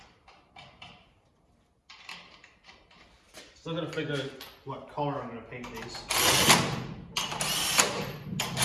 Still gotta figure out what color I'm gonna paint these.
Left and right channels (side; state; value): both; identical; correlation 1.00